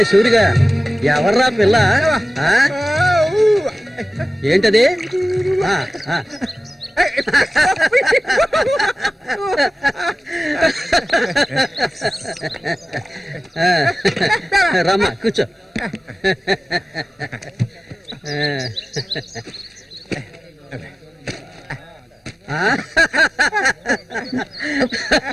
సూరిగా, ఎవర్రా పిల్ల? ఏంటది? రమ్మా కూర్చో.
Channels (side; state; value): both; normal; correlation 0.96